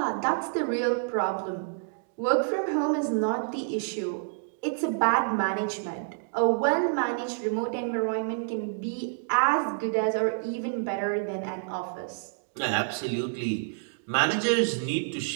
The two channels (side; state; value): left; silent; digital silence